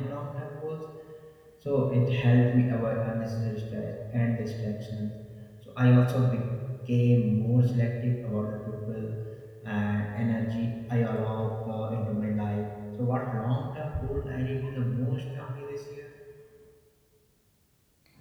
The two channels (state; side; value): identical; both; correlation 1.00